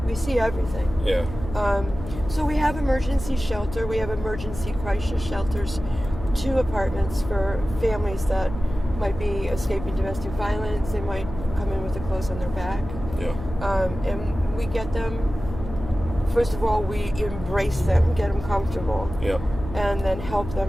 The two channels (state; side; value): noise; left; hum, 10 dB below the sound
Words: everything. Yeah. So we have emergency shelter. We have emergency crisis shelters, 2 apartments for families that might be escaping domestic violence. They might come in with the clothes on their back. Yeah. And we get them. First of all, we embrace them, get them comfortable. Yeah. And then help